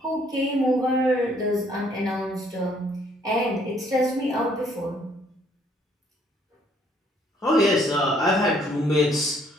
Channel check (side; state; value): both; normal; correlation 0.65